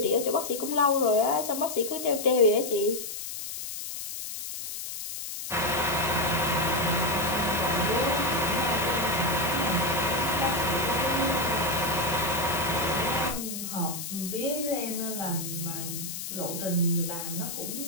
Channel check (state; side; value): noise; left; hiss, 7 dB below the sound